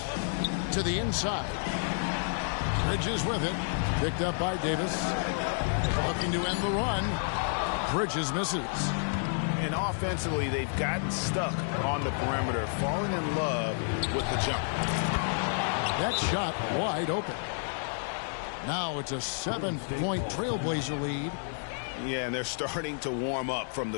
To the inside. Bridges with it. Picked up by Davis. Looking to end the run. Bridges misses. And offensively, they've gotten stuck on the perimeter, falling in love with the jump. That shot wide open. Now it's a 7-point Trailblazer lead. Yeah, and they're starting to warm up from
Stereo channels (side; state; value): right; silent; digital silence